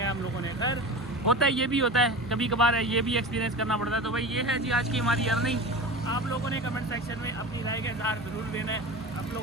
है हम लोगों ने। खैर होता है, ये भी होता है, कभी कभार है, ये भी एक्सपीरियंस करना पड़ता है। तो भाई ये है जी आज की हमारी अर्निंग। आप लोगों ने कमेंट सेक्शन में अपनी राय का इज़हार ज़रूर देना है। आप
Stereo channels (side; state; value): both; normal; correlation 0.30